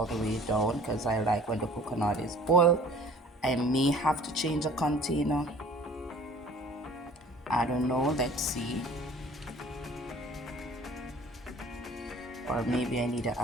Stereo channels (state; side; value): normal; both; correlation 0.49